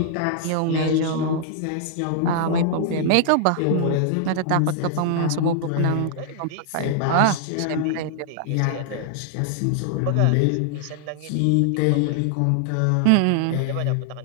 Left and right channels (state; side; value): different; both; correlation 0.00